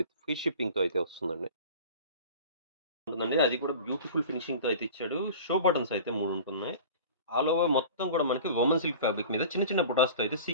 ఫ్రీ షిప్పింగ్‌తో అయితే వస్తుందండి. ఉంటుందండి. అది కూడా బ్యూటిఫుల్ ఫినిషింగ్‌తో అయితే ఇచ్చాడు. షో బటన్స్ అయితే 3 ఉంటున్నాయి. ఆల్ ఓవర్ మొత్తం కూడా మనకి వోమన్ సిల్క్ ఫ్యాబ్రిక్ మీద చిన్న చిన్న బుటాస్‌తో అయితే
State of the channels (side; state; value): both; inverted; correlation -0.39